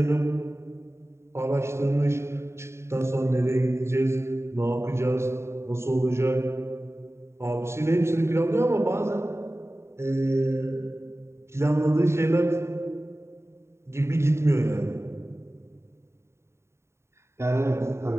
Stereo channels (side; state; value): left; late; 0.13 ms